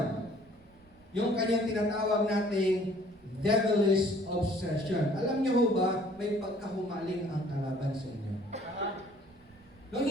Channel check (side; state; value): right; noise; rumble, 28 dB below the sound